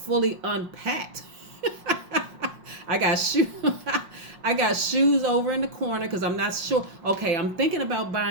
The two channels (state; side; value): late; left; 5.5 ms